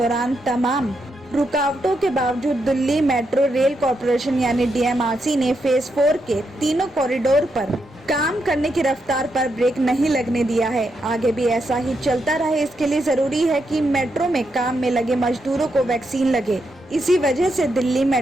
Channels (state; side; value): normal; both; correlation 0.82